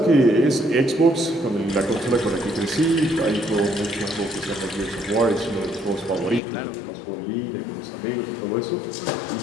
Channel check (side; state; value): right; drops out; at 6.4 s